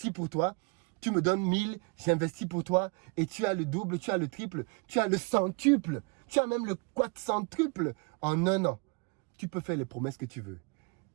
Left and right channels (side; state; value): left; quieter; 31.8 dB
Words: pour toi. Tu me donnes 1000, j'investis pour toi. Et tu as le double, tu as le triple, tu as le centuple. Tu as même le quadcentuple en un an. Tu peux faire les promesses que tu veux.